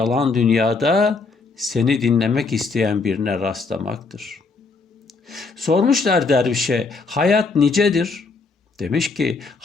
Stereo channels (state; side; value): quieter; right; 4.2 dB